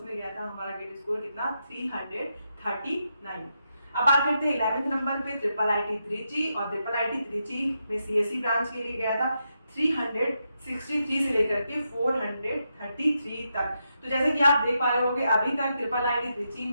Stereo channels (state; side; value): inverted; both; correlation -0.84